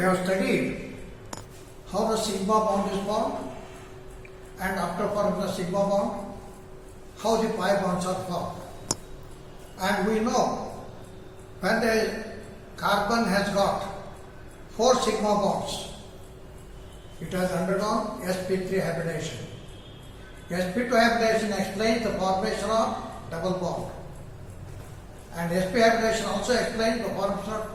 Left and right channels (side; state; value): both; identical; correlation 1.00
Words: studied how the sigma bond is formed, and after forming the sigma bond, how the pi bonds are formed. And we know when the carbon has got 4 sigma bonds, it has undergone sp3 hybridization. sp2 hybridization explains the formation of double bond, and sp hybridization also explains the formation of